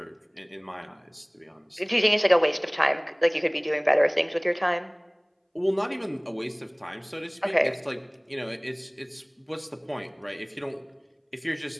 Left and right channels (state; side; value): identical; both; correlation 1.00